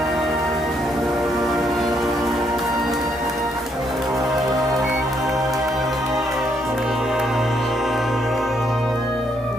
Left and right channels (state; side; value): normal; both; correlation 0.74